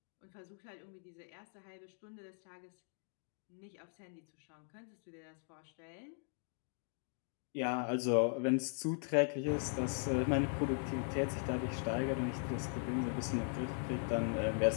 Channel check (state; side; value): silent; right; 51 dB below the other